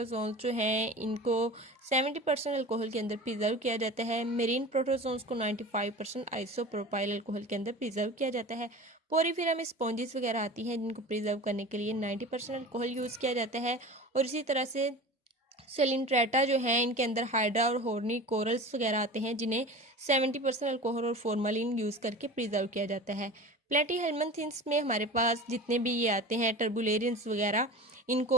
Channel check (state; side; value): normal; both; correlation 0.35